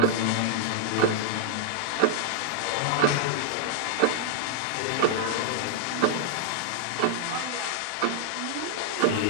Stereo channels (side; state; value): both; different; correlation -0.01